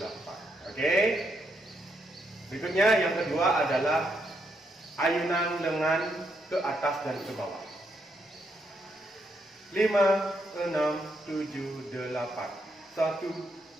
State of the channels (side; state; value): both; normal; correlation 0.78